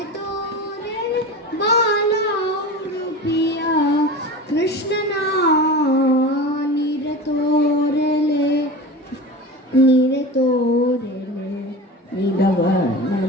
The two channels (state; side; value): normal; both; correlation 0.31